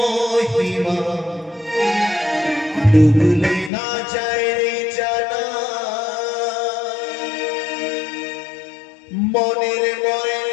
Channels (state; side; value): drops out; right; at 3.7 s